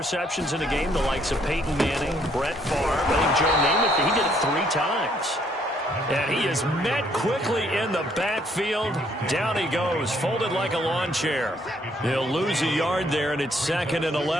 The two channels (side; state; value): both; normal; correlation 0.67